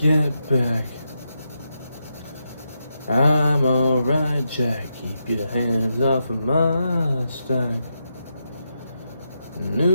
back. I'm alright, Jack. Keep your hands off of my stack.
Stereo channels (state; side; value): inverted; both; correlation -0.85